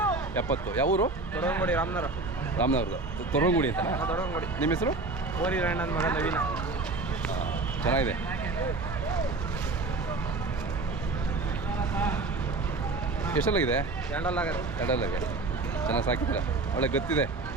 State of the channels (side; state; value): left; quieter; 3.5 dB